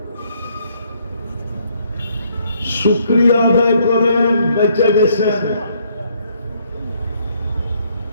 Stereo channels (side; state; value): both; inverted; correlation -0.68